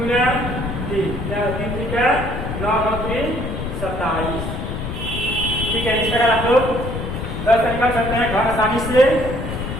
क्या 3 3 9 9 3 27। ठीक है, इस प्रकार आप लोग 10 निकाल सकते हैं घन आसानी से।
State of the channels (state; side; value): noise; left; rumble, 5 dB below the sound